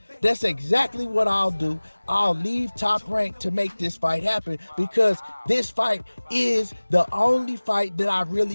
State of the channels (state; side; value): inverted; both; correlation -1.00